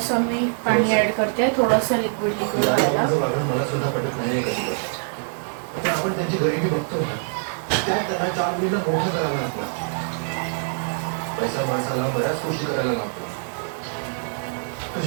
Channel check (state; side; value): silent; left; 63 dB below the other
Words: मी पाणी ऍड करते, थोडंसं लिक्विड व्हायला. आपण त्यांची गरिबी बघतो ना, त्यात त्यांना 4 मुलींना मोठं करावं लागतं. पैसा माणसाला बऱ्याच गोष्टी करायला लागतो.